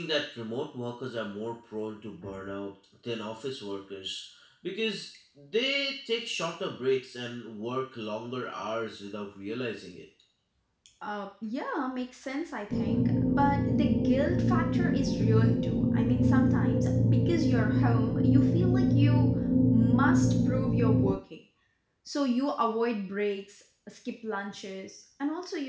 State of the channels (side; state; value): both; identical; correlation 1.00